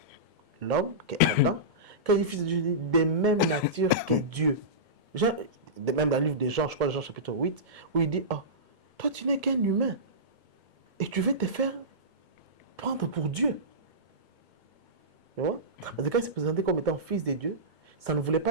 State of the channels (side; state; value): left; late; 2.1 ms